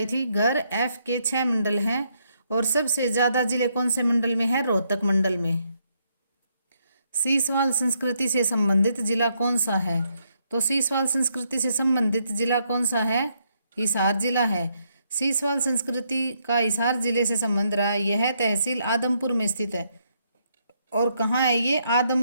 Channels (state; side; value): inverted; both; correlation -0.75